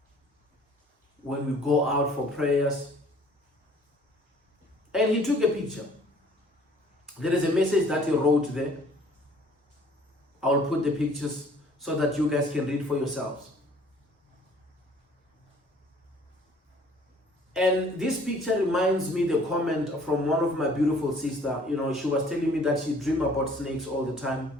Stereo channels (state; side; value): normal; both; correlation 0.55